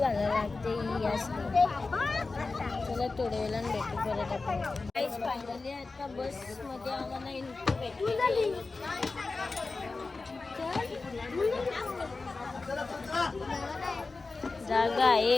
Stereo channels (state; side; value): quieter; right; 3.8 dB